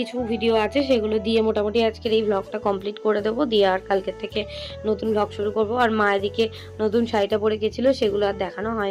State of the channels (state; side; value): identical; both; correlation 1.00